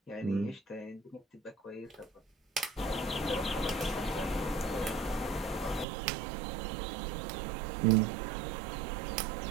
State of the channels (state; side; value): drops out; left; at 5.9 s